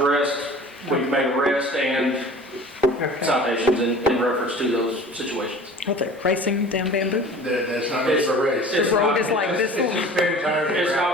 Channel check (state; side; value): normal; both; correlation 0.43